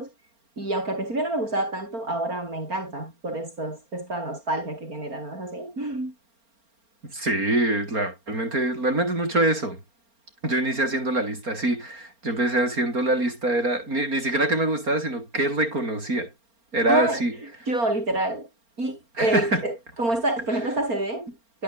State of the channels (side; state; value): left; late; 4.3 ms